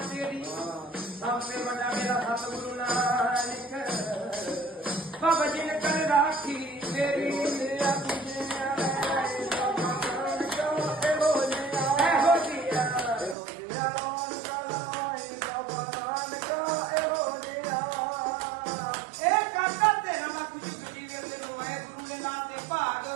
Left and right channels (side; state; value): left; drops out; at 13.4 s